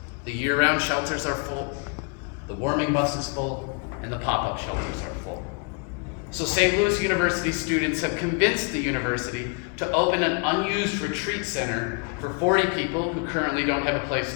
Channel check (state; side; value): quieter; right; 34.2 dB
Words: The year-round shelters are full, the warming bus is full, and the pop-up shelters are full. So St. Louis University students have convinced the university to open an unused retreat center for 40 people who currently don't have a place